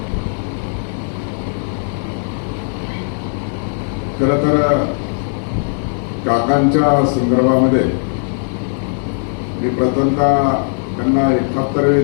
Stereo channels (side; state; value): right; silent; digital silence